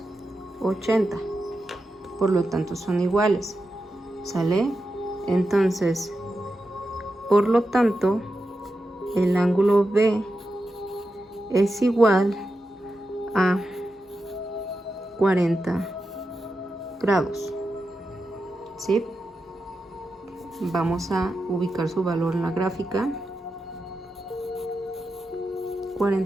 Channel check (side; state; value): both; normal; correlation 0.89